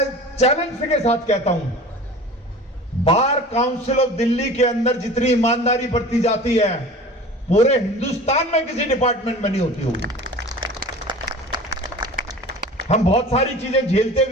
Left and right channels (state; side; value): normal; both; correlation 0.39